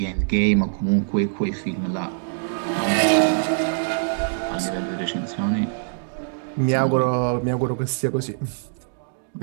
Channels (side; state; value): left; silent; digital silence